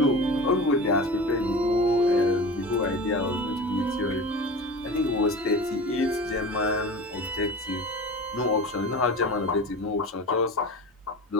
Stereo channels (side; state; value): both; normal; correlation 0.33